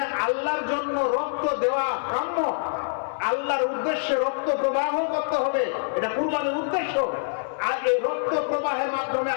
আল্লাহর জন্য রক্ত দেওয়া কাম্য, আল্লাহর উদ্দেশ্যে রক্ত প্রবাহ করতে হবে, এটা কুরবানির উদ্দেশ্য। আর এই রক্ত প্রবাহের মাধ্যমে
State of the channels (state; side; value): silent; right; 61 dB below the other